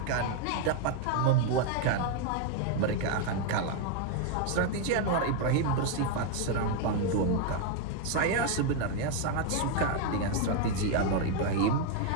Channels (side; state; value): both; different; correlation 0.00